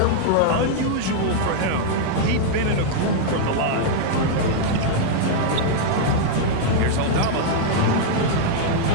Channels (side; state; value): both; different; correlation -0.01